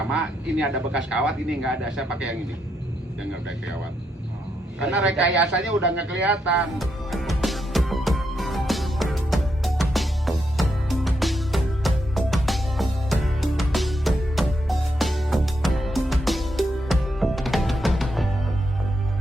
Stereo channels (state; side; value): normal; both; correlation 0.80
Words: Ini ada bekas kawat, ini nggak ada. Saya pakai yang ini. Yang nggak pakai kawat. Karena rekayasanya udah nggak kelihatan.